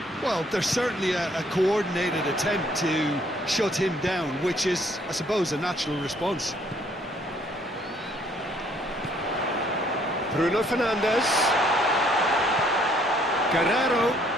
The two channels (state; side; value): normal; both; correlation 0.64